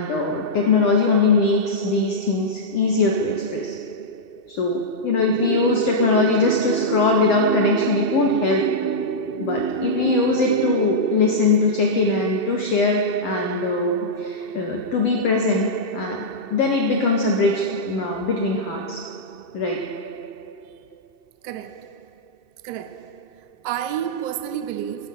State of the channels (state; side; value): late; right; 2.6 ms